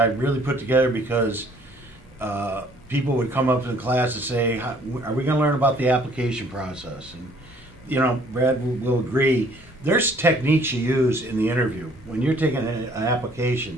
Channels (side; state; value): both; normal; correlation 0.59